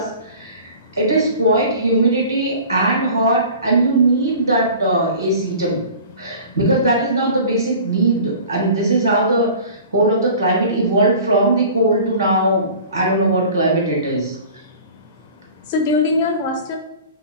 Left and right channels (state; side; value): inverted; both; correlation -0.43